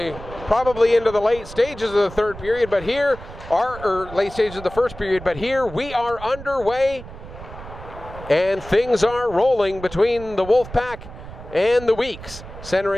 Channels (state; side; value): noise; right; rumble, 14 dB below the sound